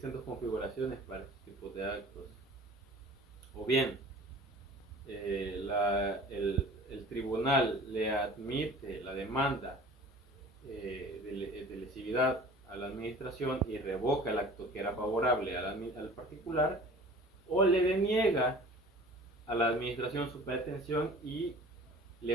dos configuraciones para este tipo de actos. O bien, el tribunal le admite la demanda de lesividad a la administración y revoca el acto que era favorable al particular, o le deniega a la administración su pretensión y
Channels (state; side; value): normal; both; correlation 0.44